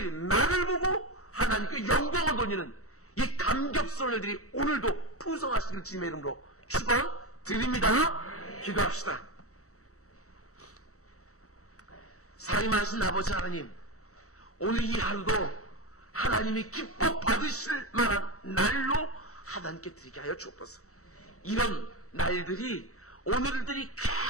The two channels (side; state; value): right; late; 0.65 ms